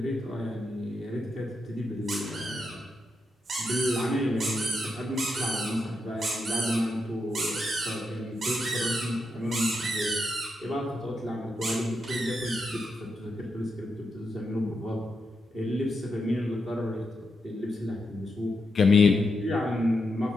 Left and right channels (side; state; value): both; normal; correlation 0.84